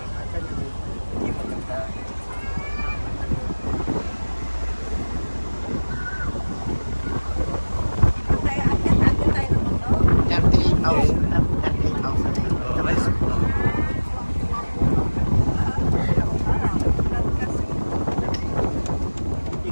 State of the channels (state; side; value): inverted; both; correlation -1.00